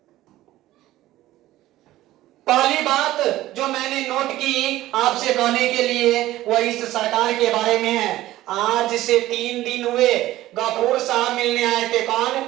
पहली बात जो मैंने नोट की आपसे कहने के लिए वो इस सरकार के बारे में है। आज से 3 दिन हुए गफूर साहब मिलने आए थे। कौन?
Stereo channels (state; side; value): quieter; left; 15.5 dB